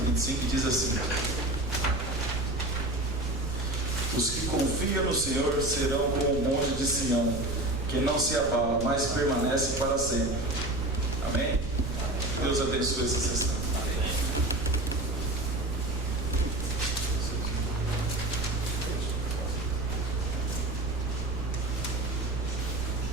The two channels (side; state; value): right; noise; rumble, 7 dB below the sound